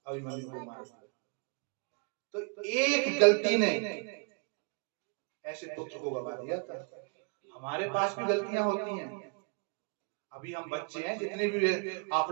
अभिमन्यु को मार दिया। तो एक गलती ने ऐसे पुत्र को गवा दिया था। हमारे पास भी गलतियां होती हैं, अभी हम बच्चे हैं, जितने भी आप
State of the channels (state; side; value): quieter; left; 37.0 dB